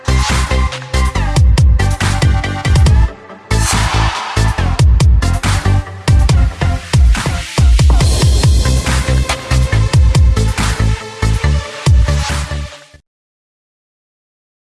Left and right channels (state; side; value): identical; both; correlation 1.00